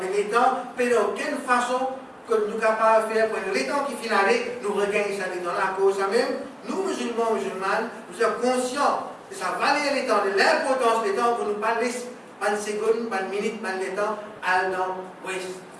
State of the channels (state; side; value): identical; both; correlation 1.00